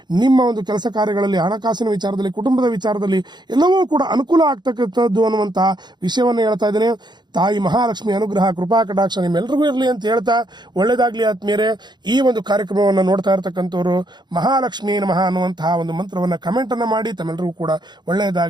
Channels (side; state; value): left; late; 0.21 ms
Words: ನಿಮ್ಮ ಒಂದು ಕೆಲಸ ಕಾರ್ಯಗಳಲ್ಲಿ, ಹಣಕಾಸಿನ ವಿಚಾರದಲ್ಲಿ, ಕುಟುಂಬದ ವಿಚಾರದಲ್ಲಿ ಎಲ್ಲವೂ ಕೂಡ ಅನುಕೂಲ ಆಗ್ತಕ್ಕಂಥದ್ದು ಅನ್ನುವಂತಹ ವಿಷಯವನ್ನು ಹೇಳ್ತಾ ಇದ್ದೇನೆ. ತಾಯಿ ಮಹಾಲಕ್ಷ್ಮಿ ಅನುಗ್ರಹ ಕೃಪಾ ಕಟಾಕ್ಷ ನಿಮ್ಮೆಲ್ಲರಿಗೂ ಇರಲಿ ಅಂತ ಹೇಳ್ತಾ ಒಳ್ಳೇದಾಗ್ಲಿ. ಆತ್ಮೀಯರೇ, ಈ ಒಂದು ಕಾರ್ಯಕ್ರಮವನ್ನು ನೋಡ್ತಾ ಇರತಕ್ಕಂಥವ್ರು ಮಹಾಲಕ್ಷ್ಮಿ ನಮಃ ಅನ್ನುವಂತಹ ಒಂದು ಮಂತ್ರವನ್ನ ಕಮೆಂಟ್ ಅನ್ನ ಮಾಡಿ ತಮ್ಮೆಲ್ಲರಿಗೂ ಕೂಡ